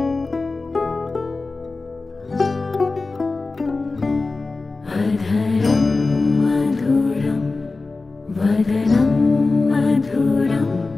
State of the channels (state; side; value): quieter; right; 3.7 dB